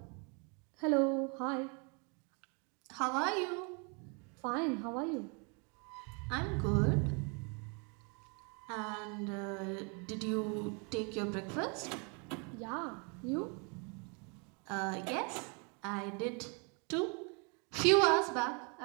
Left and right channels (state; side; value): quieter; left; 34.5 dB